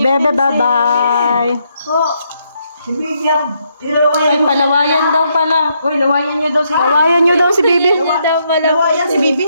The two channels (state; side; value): inverted; both; correlation -0.76